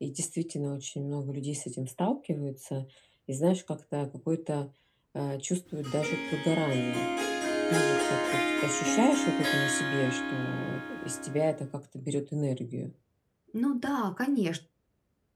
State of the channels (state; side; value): identical; both; correlation 1.00